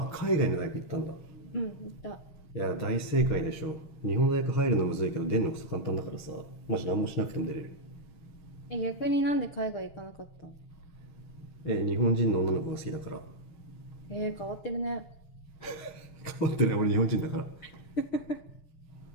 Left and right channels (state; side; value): late; right; 6.4 ms